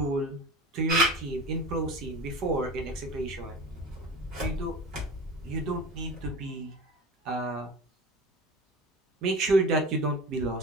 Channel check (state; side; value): normal; both; correlation 0.34